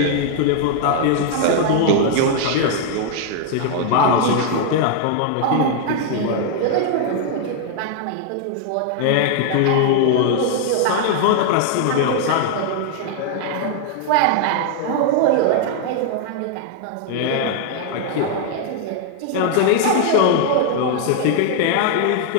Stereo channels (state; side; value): different; both; correlation 0.00